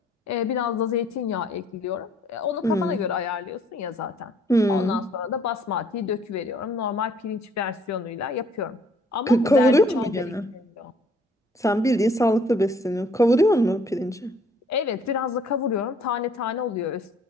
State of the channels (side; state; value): both; normal; correlation 0.61